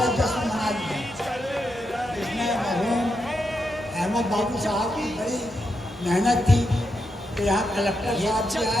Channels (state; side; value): normal; both; correlation 0.84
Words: जश्न मना लिया। इसमें मरहूम अहमद बाबू साहब की बड़ी मेहनत थी कि यहाँ कलेक्टर साहब भी